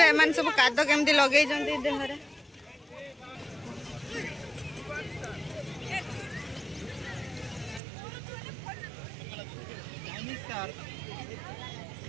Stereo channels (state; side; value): drops out; left; at 7.8 s